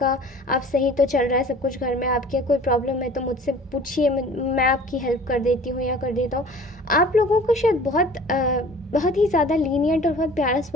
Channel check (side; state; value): both; normal; correlation 0.45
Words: सही तो चल रहा है सब कुछ घर में, आपके कोई प्रॉब्लम है तो मुझसे पूछिए, मैं आपकी हेल्प कर देती हूँ या कर देता हूँ। आप लोगों को शायद बहुत ही ज़्यादा लीनियंट और बहुत प्यारा